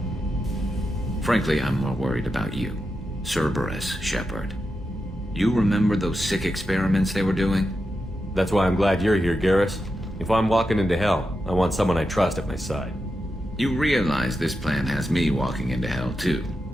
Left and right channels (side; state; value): both; normal; correlation 0.88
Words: Frankly, I'm more worried about you. Cerberus, Shepard. You remember those sick experiments they were doing? That's why I'm glad you're here, Garrus. If I'm walking into hell, I want someone I trust at my side. You realize this plan has me walking into hell, too.